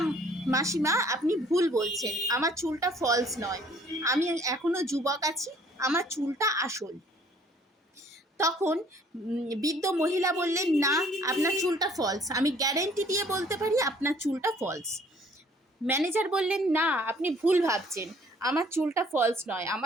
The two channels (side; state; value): both; normal; correlation 0.58